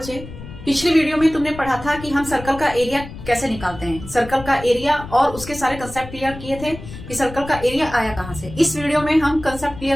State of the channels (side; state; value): left; noise; rumble, 13 dB below the sound